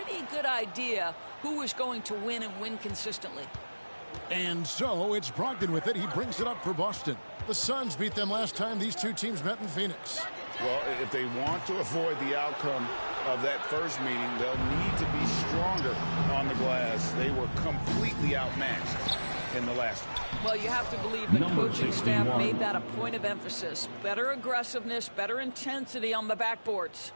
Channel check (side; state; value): both; inverted; correlation -1.00